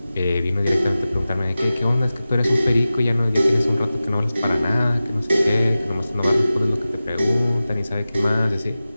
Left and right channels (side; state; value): both; inverted; correlation -0.95